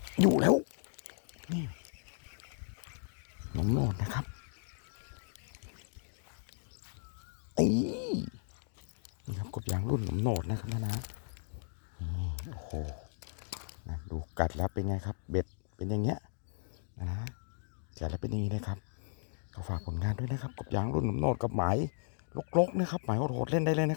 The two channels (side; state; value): right; silent; digital silence